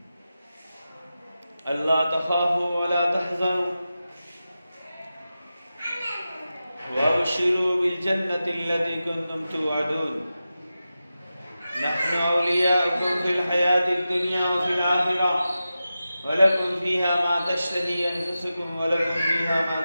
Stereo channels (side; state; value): both; inverted; correlation -0.93